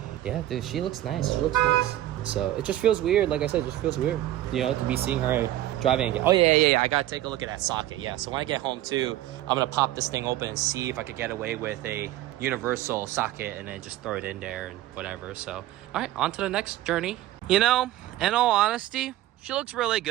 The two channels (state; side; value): quieter; left; 14.2 dB